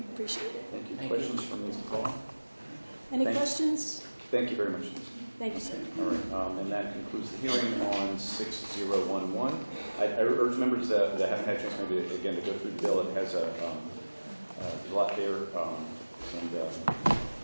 appreciate it. Thank you. Thank Questions from Ms. DePaul? Any Thank you. questions? Thank you very much. Thank you, sir. All right, and that concludes the hearing on 6011. I urge members that haven't had a chance maybe again to go through the bill. It has a lot there, and we can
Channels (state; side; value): inverted; both; correlation -1.00